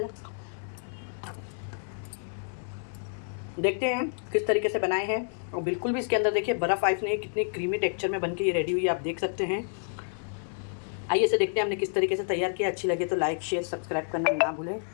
देखते हैं किस तरीके से बनाए हैं। और बिल्कुल भी इसके अंदर देखिए बर्फ़ आइस नहीं, कितनी क्रीमी टेक्सचर में बन के ये रेडी हुई है, आप देख सकते हैं। आइए इसे देखते हैं हमने किस तरीके से तैयार किया। अच्छी लगे तो लाइक शेयर सब्सक्राइब करना ना भूलें।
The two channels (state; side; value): silent; right; 58 dB below the other